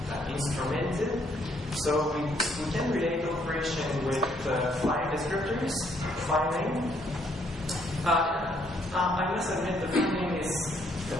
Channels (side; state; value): both; normal; correlation 0.69